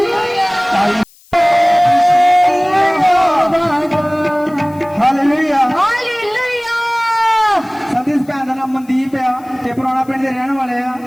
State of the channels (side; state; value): left; noise; hiss, 28 dB below the sound